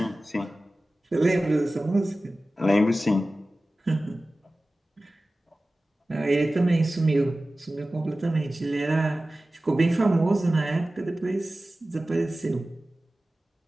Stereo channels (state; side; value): normal; both; correlation 0.96